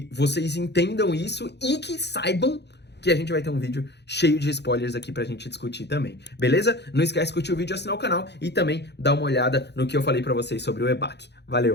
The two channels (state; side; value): late; right; 0.50 ms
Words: vocês entendam isso e que saibam que a gente vai ter um vídeo cheio de spoilers aqui pra gente discutir também, beleza? Não esquece de curtir o vídeo, assinar o canal e também dar uma olhada no que eu falei pra vocês sobre o EBAC.